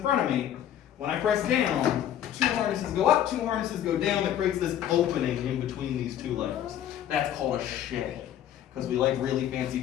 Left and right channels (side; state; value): right; quieter; 10.8 dB